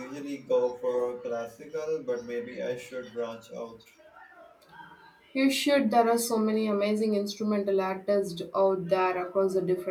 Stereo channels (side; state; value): both; identical; correlation 1.00